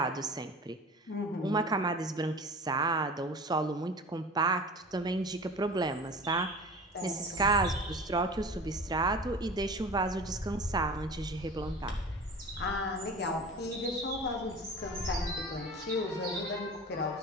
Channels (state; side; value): normal; both; correlation 0.37